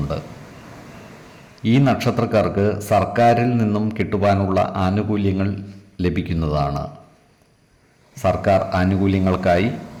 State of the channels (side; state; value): both; identical; correlation 1.00